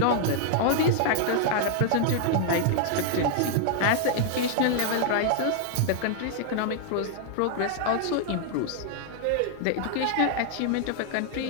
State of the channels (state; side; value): different; both; correlation 0.00